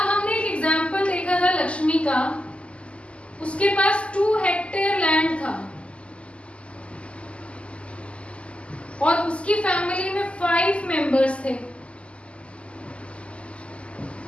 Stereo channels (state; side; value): late; right; 0.056 ms